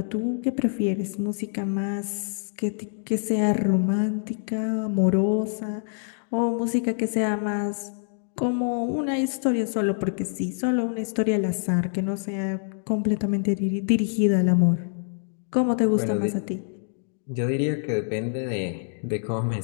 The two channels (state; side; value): silent; right; digital silence